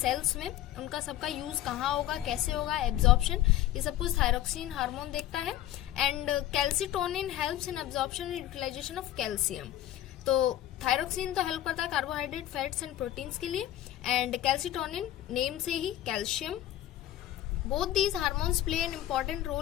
में, उनका सबका यूज कहाँ होगा, कैसे होगा, एब्जॉर्प्शन, ये सब कुछ थायरोक्सिन हार्मोन देखता है. And calcitonin helps in absorption and utilization of calcium. तो थायरोक्सिन तो हेल्प करता है कार्बोहाइड्रेट, फैट्स एंड प्रोटीन्स के लिए, एंड कैल्सिटोनिन नेम से ही calcium Both these hormones play an important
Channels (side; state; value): right; quieter; 13.1 dB